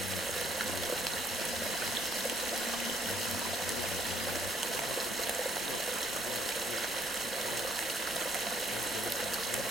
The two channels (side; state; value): right; noise; rumble, 24 dB below the sound